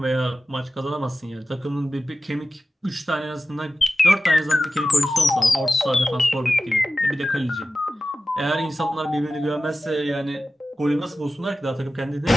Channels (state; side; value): normal; both; correlation 0.94